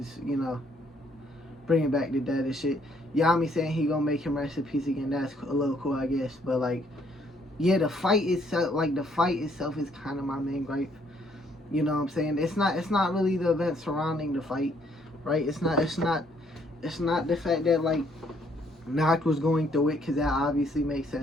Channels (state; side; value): normal; both; correlation 0.67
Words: bringing back the dead and shit. Yami saying he gonna make him rest in peace again. That's a little cool, I guess. But like, yeah, the fight itself is kind of my main gripe. You know what I'm saying? It's not really the event surrounding the fight, right? It's not the fact that, like, Noct was going through it, because that obviously makes